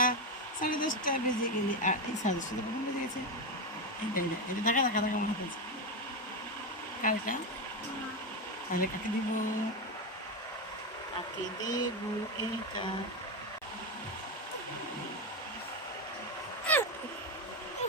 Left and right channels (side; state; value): both; normal; correlation 0.11